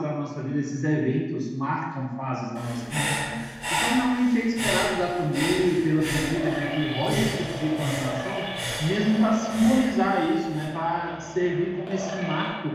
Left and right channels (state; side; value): identical; both; correlation 1.00